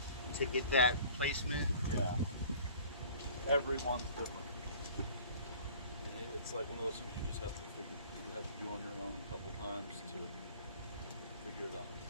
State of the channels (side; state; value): both; inverted; correlation -0.48